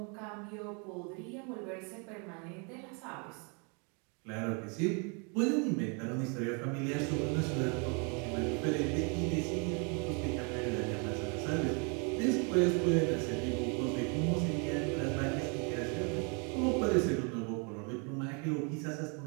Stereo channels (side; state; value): left; quieter; 35.5 dB